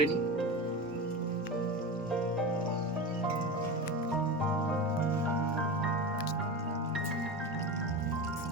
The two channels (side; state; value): both; normal; correlation 0.25